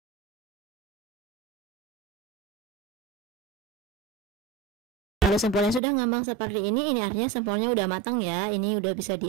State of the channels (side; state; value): left; drops out; at 5.8 s